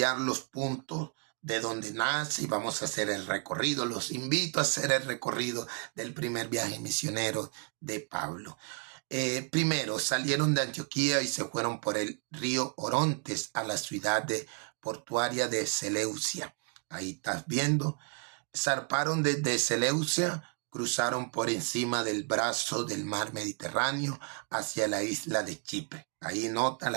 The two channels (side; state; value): left; quieter; 39.4 dB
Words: los puntos de donde nace y vamos a hacer el recorrido. Los invito a hacer el recorrido del primer viaje misionero de Pablo. Primero salieron de Antioquía y se fueron por el río Orontes a la ciudad portuaria de Seleucia. Ahí estás viendo. Zarparon desde Seleucia, cruzaron por encima del brazo del mar Mediterráneo hacia la isla de Chipre. Ahí nota